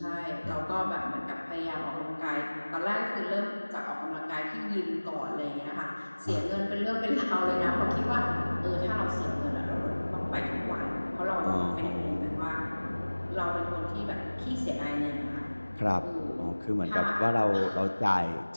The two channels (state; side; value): inverted; both; correlation -1.00